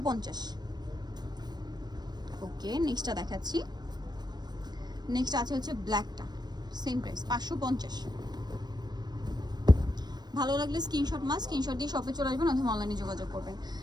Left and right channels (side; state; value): left; late; 0.20 ms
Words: ওকে, নেক্সটটা দেখাচ্ছি। নেক্সট আছে হচ্ছে ব্ল্যাকটা, সেম প্রাইস 550। ভালো লাগলে স্ক্রিনশট স্ক্রিনশট দিয়ে শপে চলে আসবেন অথবা অনলাইনে যোগাযোগ করবেন।